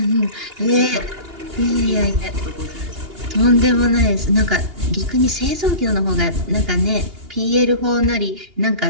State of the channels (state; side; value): late; left; 2.8 ms